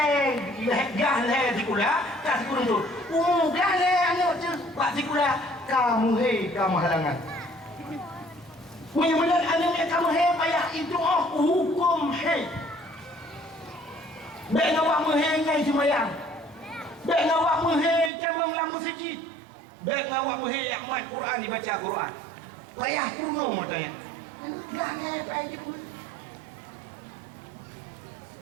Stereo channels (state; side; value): drops out; left; at 18.1 s